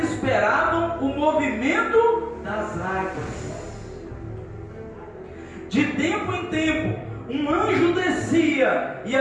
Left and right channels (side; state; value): both; identical; correlation 1.00